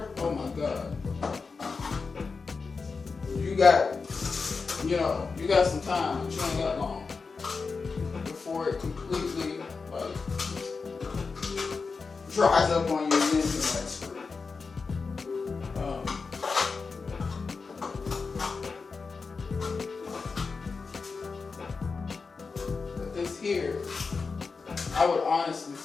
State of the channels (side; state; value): right; quieter; 4.7 dB